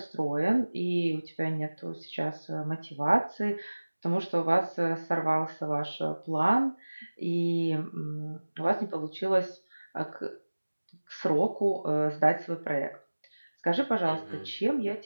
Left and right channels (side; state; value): both; inverted; correlation -1.00